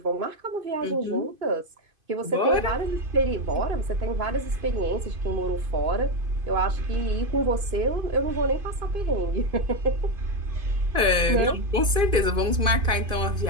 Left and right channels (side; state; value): left; late; 2.5 ms